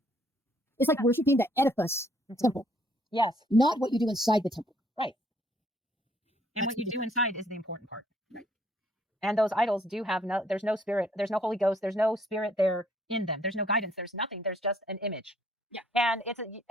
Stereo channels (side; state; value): both; normal; correlation 0.65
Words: It's like worshiping the edifice temple. Yes. Not what you do inside the temple. Right. And what you do inside is the important part. Right. And those idols do have there's no spirit, there's no Holy Ghost, there's no spirit there in them. There's no guidance, there's nothing. There's just an image. Yeah. And it's